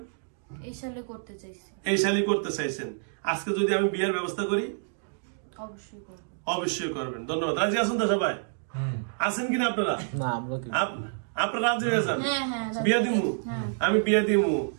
এই সালে করতে চাইছি। এই সালে করতে চাইছেন। আজকে যদি আমি বিয়ের ব্যবস্থা করি? অবশ্যই করব। অবশ্যই করবেন। ধন্যবাদ। রাজি আছেন তো সবাই? আছেন কিনা আপনারা? না, আমরা কি আপনারা রাজি হয়ে যান? হ্যাঁ, হ্যাঁ, রাজি বিয়ে দিমু। হ্যাঁ। আমি বিয়ে দিমু।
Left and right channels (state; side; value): silent; left; digital silence